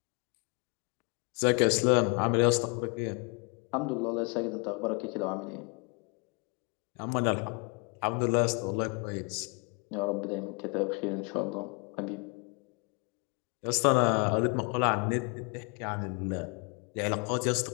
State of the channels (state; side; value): quieter; right; 31.5 dB